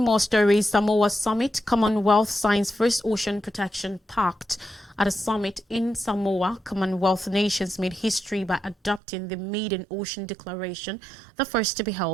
more stories, Samoa Summit, Commonwealth signs first ocean protection pact. At a summit in Samoa, Commonwealth nations made history by adopting the Maiden Ocean Declaration, the first to be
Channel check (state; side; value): drops out; left; at 9.0 s